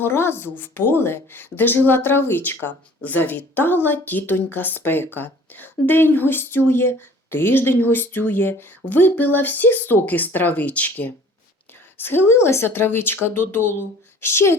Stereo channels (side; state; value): both; normal; correlation 0.50